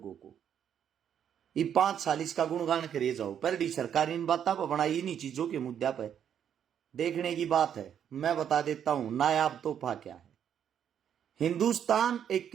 को? ये 5 साल इसका गुणगान करे जाओ, पर सरकार इन बातों पर बनाई, इन्हीं चीजों के मुद्दे पर देखने की बात है। मैं बता देता हूं नायाब तोहफा क्या है। हिंदुस्तान एक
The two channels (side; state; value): left; quieter; 9.0 dB